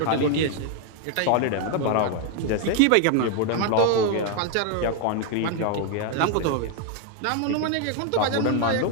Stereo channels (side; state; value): both; different; correlation 0.00